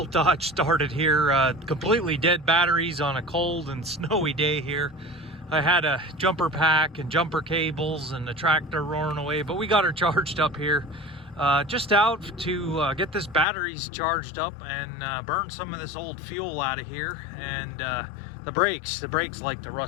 Dodge started here. Completely dead batteries on a cold and snowy day here. I had a jumper pack and jumper cables and the tractor roaring away, but we got her charged up here. Just out to get this batteries charged up and burn some of this old fuel out of here. And the brakes like to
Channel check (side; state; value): right; drops out; at 13.5 s